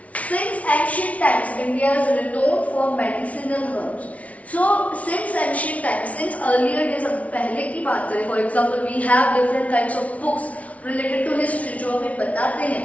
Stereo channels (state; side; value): late; right; 0.067 ms